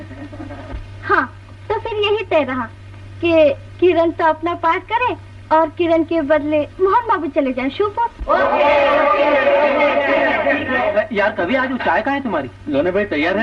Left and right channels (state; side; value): identical; both; correlation 1.00